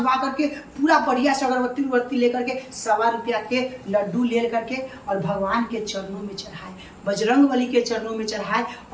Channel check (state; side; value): identical; both; correlation 1.00